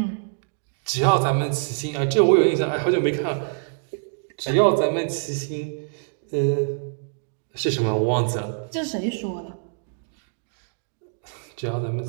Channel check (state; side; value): silent; left; digital silence